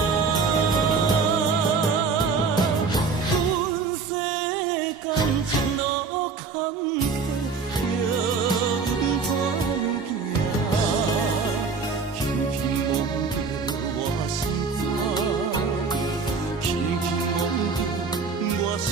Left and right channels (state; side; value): quieter; left; 4.8 dB